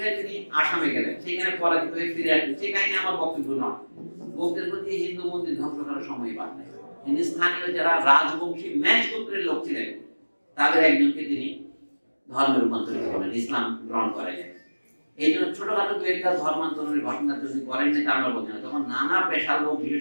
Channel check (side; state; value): both; inverted; correlation -1.00